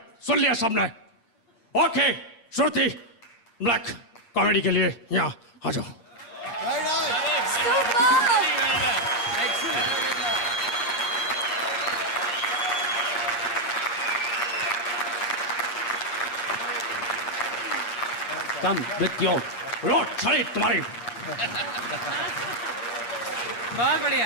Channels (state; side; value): late; right; 8.6 ms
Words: सुन लिया सबने? ओके, श्रुति ब्लैक कॉमेडी के लिए यहाँ आ जाओ। Come with your रोड छड़ी तुम्हारी। बहुत